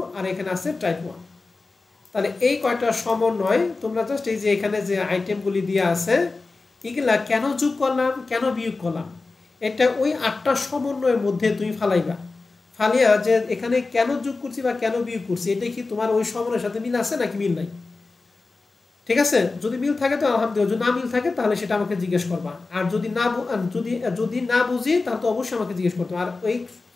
আর এখানে আছে টাইপ 1। তাহলে এই কয়টা সমন্বয় তোমরা জাস্ট এই যে এখানে যে আইটেমগুলি দিয়ে আছে এগুলা কেন যোগ করলাম কেন বিয়োগ করলাম, এটা ওই 8টা সমন্বয়ের মধ্যে তুমি ফালাইবা। ফালিয়া যে এখানে কেন যোগ করছি বা কেন বিয়োগ করছি, এটা কি তোমার ওই সমন্বয়ের সাথে মিল আছে নাকি মিল নাই? ঠিক আছে? যদি মিল থাকে তো আলহামদুলিল্লাহ, যদি না মিল থাকে তাহলে সেটা আমাকে জিজ্ঞেস করবা। আর যদি না যদি না বুঝি তাহলে তো অবশ্যই আমাকে জিজ্ঞেস করতে হবে। আর ওই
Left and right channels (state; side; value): quieter; right; 3.7 dB